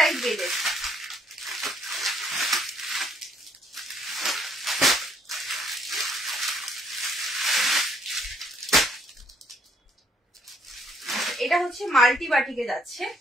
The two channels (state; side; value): normal; both; correlation 0.67